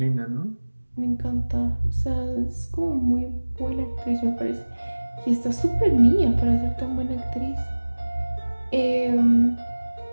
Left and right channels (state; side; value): inverted; both; correlation -1.00